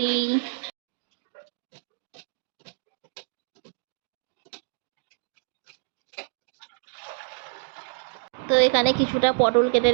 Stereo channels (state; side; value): silent; left; digital silence